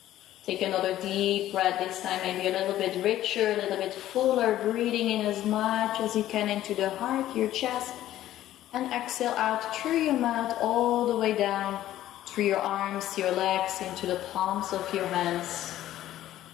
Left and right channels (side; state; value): right; quieter; 13.4 dB